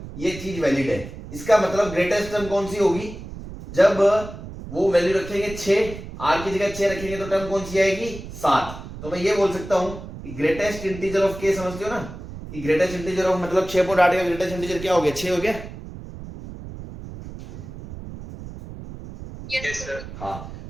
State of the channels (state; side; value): noise; right; rumble, 12 dB below the sound